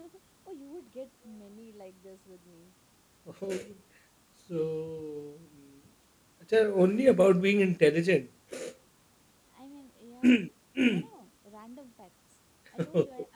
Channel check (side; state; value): both; identical; correlation 1.00